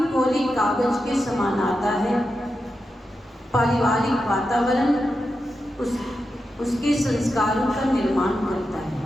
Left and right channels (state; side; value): normal; both; correlation 0.89